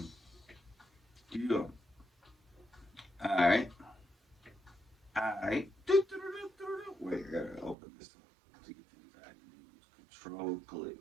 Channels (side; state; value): left; drops out; at 7.8 s